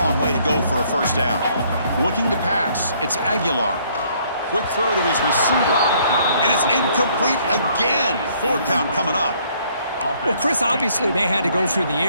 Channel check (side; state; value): both; inverted; correlation -0.64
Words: way to go for a first down. Looking to pass. It's Aguilar. Quick throw to his receiver. And it's incomplete again. Fourth down coming up. Well, Chris, obviously they had to go through the